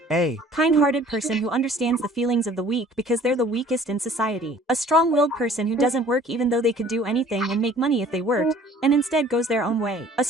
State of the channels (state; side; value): normal; both; correlation 0.52